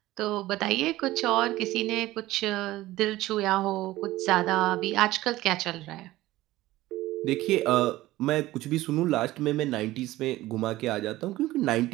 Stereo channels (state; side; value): quieter; left; 16.9 dB